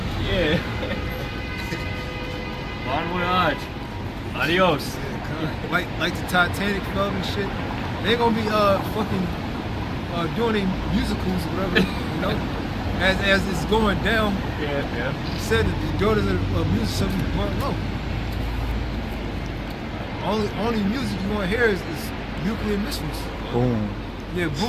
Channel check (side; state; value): both; identical; correlation 1.00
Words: Yeah. Bon voyage. Adios. Like the Titanic fell and shit. They ain't gonna be fucking doing any musicals or whatever, you know. As it's going down, Yeah. he said that the daughters of music shall be burnt low. Only music you want to hear is nuclear missiles. Boom. Yeah,